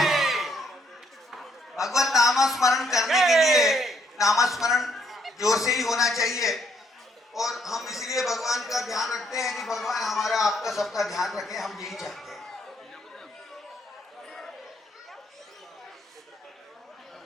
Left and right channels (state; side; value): normal; both; correlation 0.70